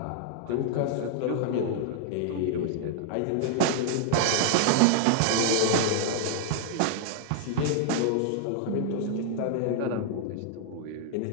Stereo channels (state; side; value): different; both; correlation -0.01